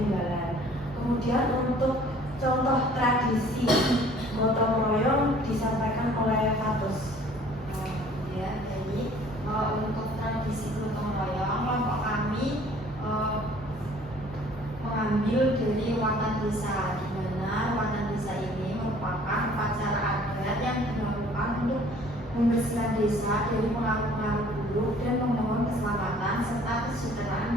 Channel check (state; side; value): normal; both; correlation 0.54